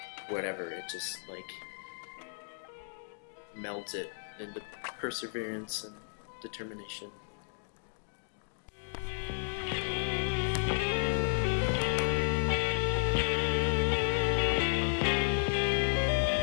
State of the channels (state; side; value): silent; right; digital silence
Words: whatever, it just like melds it into perseverance and determination.